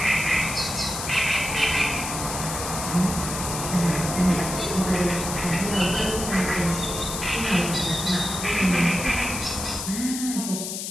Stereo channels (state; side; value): noise; left; hiss, 5 dB below the sound